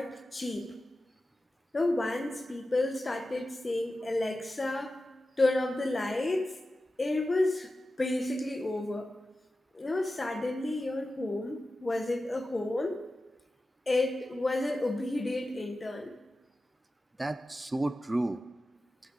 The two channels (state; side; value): normal; both; correlation 0.93